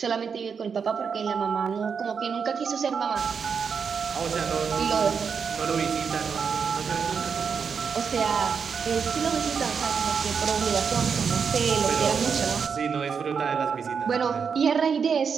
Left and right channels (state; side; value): quieter; left; 6.2 dB